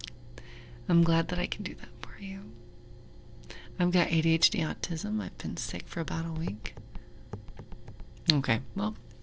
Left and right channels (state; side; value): identical; both; correlation 1.00